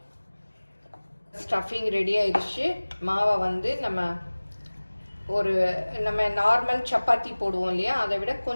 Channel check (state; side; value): inverted; both; correlation -1.00